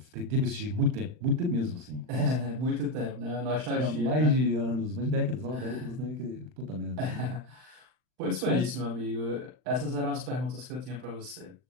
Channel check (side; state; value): left; late; 39 ms